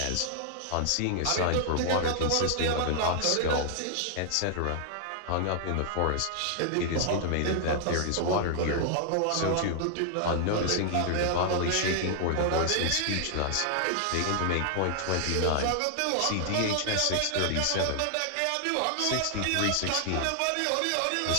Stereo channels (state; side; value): different; both; correlation 0.00